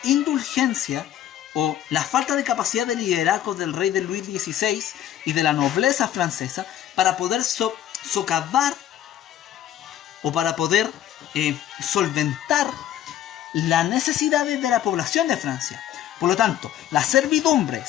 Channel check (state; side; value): quieter; right; 11.5 dB